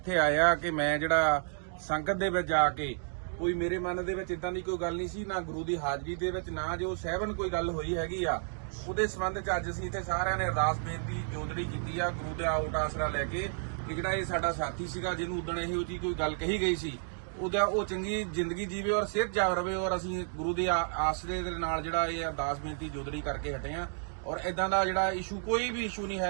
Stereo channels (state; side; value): silent; left; digital silence